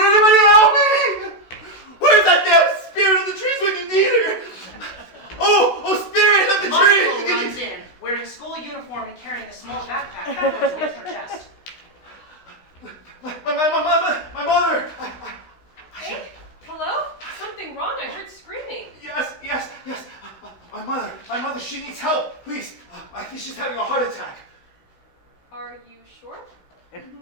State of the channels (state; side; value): late; right; 16 ms